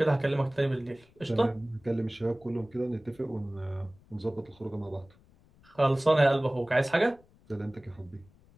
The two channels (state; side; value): noise; left; rumble, 29 dB below the sound